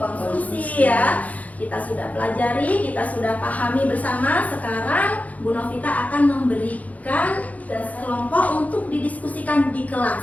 konsumsi ya. Kita sudah pelajari, kita sudah pahami bersama. Sekarang Bu Novita akan memberikan kelompok untuk didiskusikan di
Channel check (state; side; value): late; right; 0.073 ms